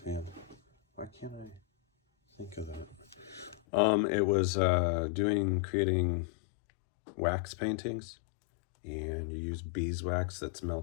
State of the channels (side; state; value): right; drops out; at 3.6 s